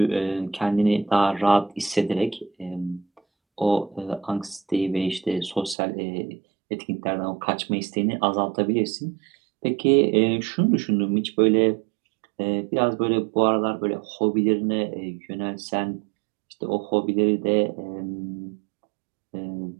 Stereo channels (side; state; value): left; drops out; at 5.8 s